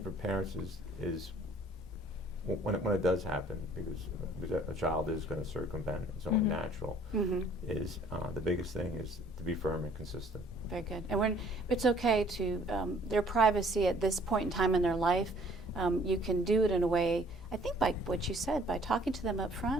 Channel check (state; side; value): normal; both; correlation 0.57